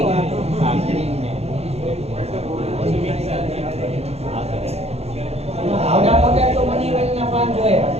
આવડા મોટા તો મનીવેલના પાન જોયા.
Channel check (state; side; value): late; left; 0.30 ms